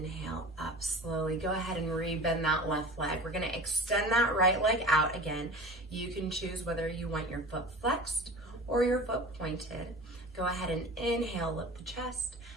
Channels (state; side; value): normal; both; correlation 0.37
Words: up slowly. Go ahead and rebend that left leg. We're gonna extend that right leg out again. You can choose whether you want your foot flexed or your foot pointed. Go ahead and inhale, lift the chest,